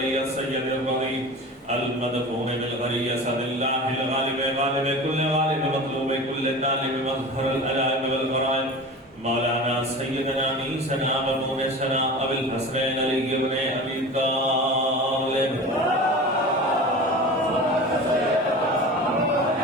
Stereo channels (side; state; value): both; normal; correlation 0.34